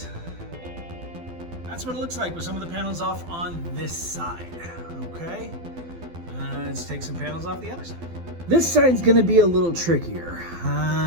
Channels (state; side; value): late; left; 12 ms